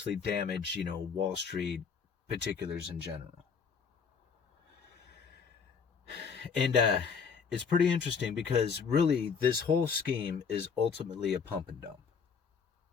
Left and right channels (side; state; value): right; quieter; 6.0 dB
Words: damage, Wall Street particulars in general. And it's pretty interesting because really this whole scheme is ultimately a pump and dump.